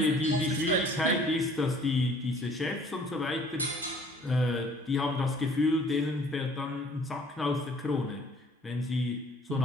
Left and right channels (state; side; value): normal; both; correlation 0.55